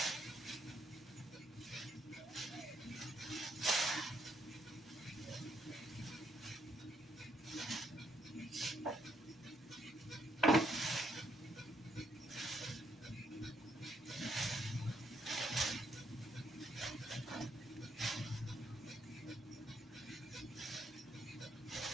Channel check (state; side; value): normal; both; correlation 0.73